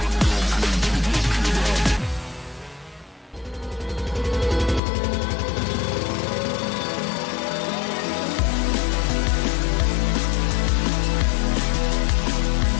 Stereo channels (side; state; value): right; drops out; at 4.8 s